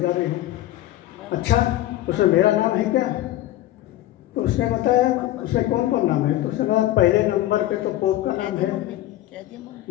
रहे हैं। अच्छा, उसमें मेरा नाम है क्या? तो उसने बताया उसमें कौन कौन नाम है? तो उसने कहा पहले नंबर पे तो पोप का नाम है,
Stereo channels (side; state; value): right; quieter; 14.8 dB